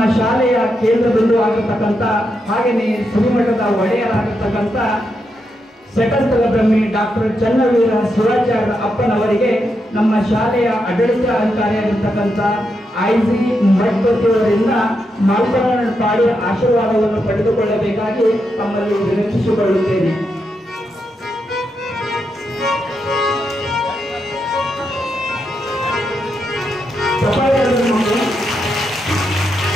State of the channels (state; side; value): normal; both; correlation 0.83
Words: ಶಾಲೆಯ ಕೇಂದ್ರ ಬಿಂದು ಆಗಿರ್ತಕ್ಕಂಥ ಹಾಗೆಯೇ ಶ್ರೀಮಠದ ಒಡೆಯರಾಗಿರ್ತಕ್ಕಂಥ ಸೆಟಸ್ಥಲ ಬ್ರಹ್ಮಿ ಡಾಕ್ಟರ್ ಚನ್ನವೀರ ಶಿವಾಚಾರ್ಯ ಅಪ್ಪನವರಿಗೆ ನಮ್ಮ ಶಾಲೆಯ ಆಡಳಿತಾಧಿಕಾರಿಯಾಗಿರ್ತಕ್ಕಂಥ ಐಜಿ ಮಠಪತಿಯವರಿಂದ ಮಾಲ್ಪರಣ ಪಾಡಿ ಆಶೀರ್ವಾದವನ್ನು ಪಡೆದುಕೊಳ್ಳಬೇಕಾಗಿ ತಮ್ಮಲ್ಲಿ ವಿನಂತಿಸಿಕೊಳ್ಳುತ್ತೇನೆ.